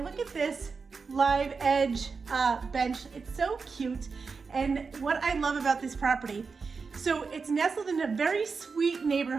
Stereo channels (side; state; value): left; quieter; 4.9 dB